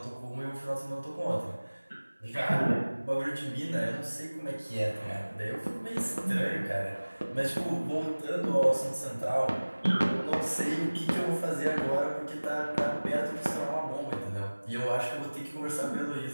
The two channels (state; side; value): inverted; both; correlation -1.00